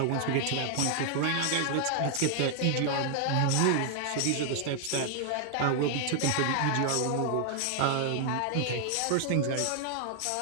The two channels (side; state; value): both; different; correlation 0.00